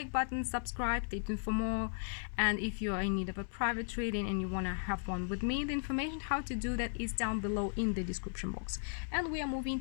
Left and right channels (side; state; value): right; silent; digital silence